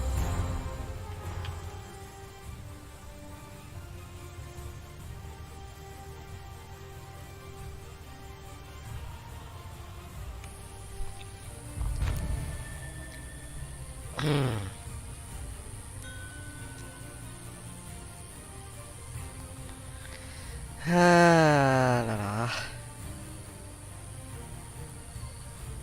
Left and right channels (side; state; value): both; identical; correlation 1.00